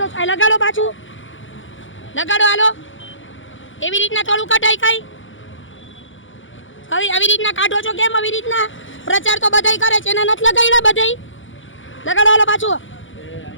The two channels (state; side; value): late; right; 0.56 ms